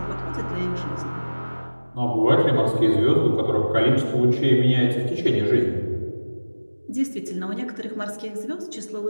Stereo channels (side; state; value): both; inverted; correlation -1.00